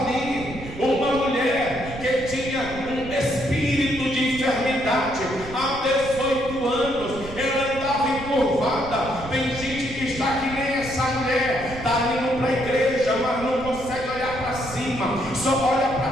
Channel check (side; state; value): right; noise; rumble, 13 dB below the sound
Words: ali uma mulher que tinha um espírito de enfermidade há 18 anos. Ela andava encurvada. Tem gente que está que nem essa mulher, está indo para a igreja, mas não consegue olhar para cima, só olha para